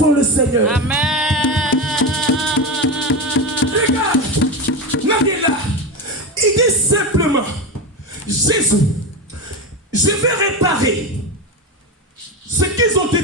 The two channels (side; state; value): both; normal; correlation 0.18